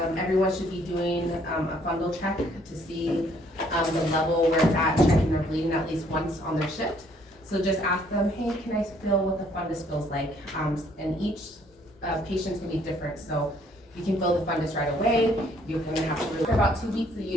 everyone should be doing a fundal check to see the level where it's at, checking their bleeding at least once on their shift. So just ask them, hey, can I feel what the fundus feels like? And each patient's gonna be different, so you can feel the fundus right away. You're gonna have to, for about 2 weeks, the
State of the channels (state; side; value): normal; both; correlation 0.64